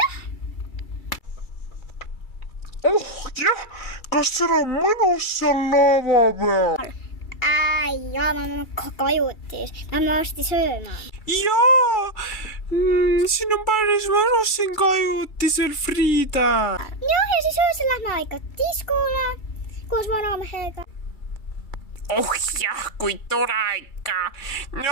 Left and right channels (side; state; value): right; late; 2.3 ms